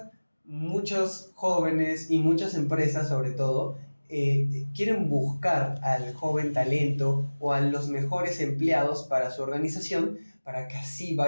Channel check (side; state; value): both; inverted; correlation -1.00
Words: muchos jóvenes y muchas empresas, sobre todo, quieren buscar al joven talento o a los mejores empleados para su organización para que así